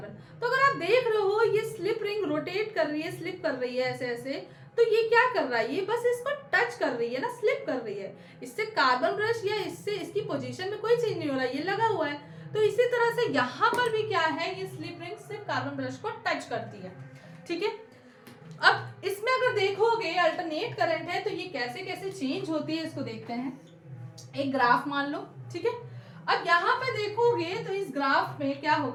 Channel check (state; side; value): identical; both; correlation 1.00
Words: तो अगर आप देख रहे हो ये स्लिप रिंग रोटेट कर रही है, स्लिप कर रही है ऐसे ऐसे, तो ये क्या कर रहा है, ये बस इसको टच कर रही है ना, स्लिप कर रही है। इससे कार्बन ब्रश या इससे इसकी पोजीशन में कोई चेंज नहीं हो रहा है, ये लगा हुआ है। तो इसी तरह से यहाँ पर भी क्या है, ये स्लिप रिंग सिर्फ कार्बन ब्रश को टच करती है। ठीक है, अब इसमें अगर देखोगे अल्टरनेट करंट है तो ये कैसे कैसे चेंज होती है इसको देखते हैं। एक ग्राफ मान लो। ठीक है, अब यहाँ पे देखोगे तो इस ग्राफ में क्या